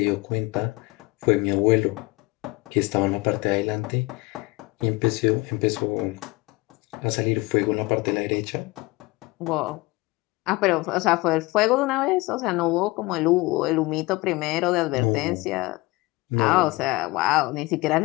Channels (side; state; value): right; quieter; 22.9 dB